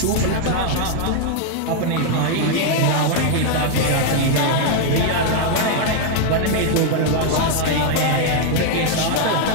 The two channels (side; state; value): both; different; correlation 0.00